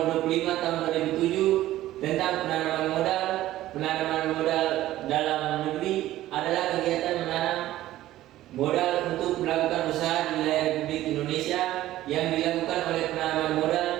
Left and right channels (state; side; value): quieter; left; 14.8 dB